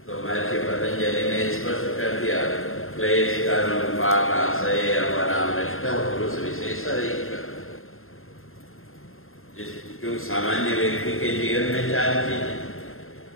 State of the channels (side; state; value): right; late; 0.61 ms